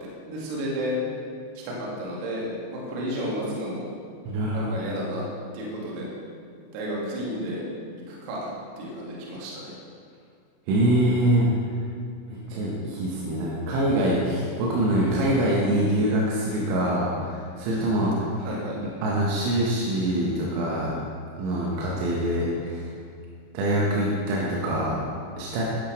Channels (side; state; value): left; late; 32 ms